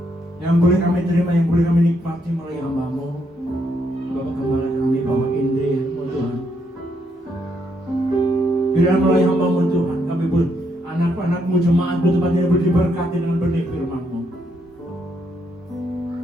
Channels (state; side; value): normal; both; correlation 0.75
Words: yang boleh kami terima, yang boleh kami nikmati melalui hamba-Mu, Bapak Gembala kami, Bapak Indri, Tuhan. Biar melalui hamba-Mu Tuhan, kami boleh anak-anak-Mu, jemaat-Mu tempat ini boleh diberkati dengan benih firman-Mu.